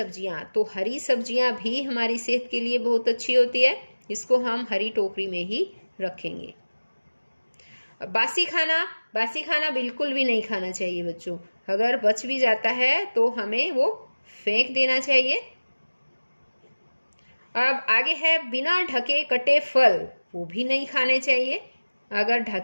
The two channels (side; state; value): both; inverted; correlation -1.00